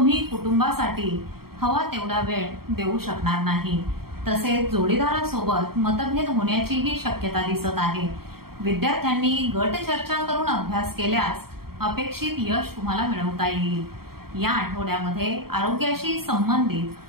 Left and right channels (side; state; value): left; late; 0.94 ms